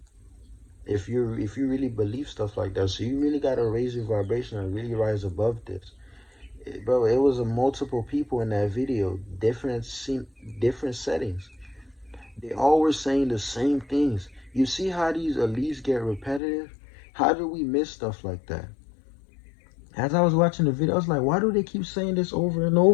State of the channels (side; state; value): right; drops out; at 16.4 s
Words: if you really believe stuff like that. So you really gotta raise your vibration and really rise above this. Bro, it was a multiple people in that video, different settings. They all were saying the same things. You see how these elites get repetitive? How do we miss stuff like that? As I was watching the video, I was like, why do they keep saying this over and